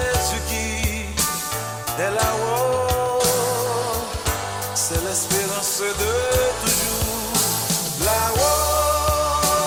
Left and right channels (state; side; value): identical; both; correlation 1.00